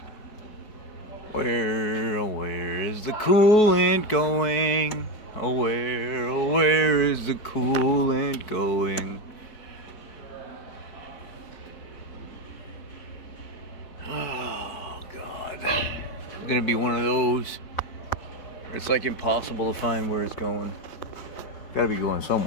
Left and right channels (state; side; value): late; right; 4.6 ms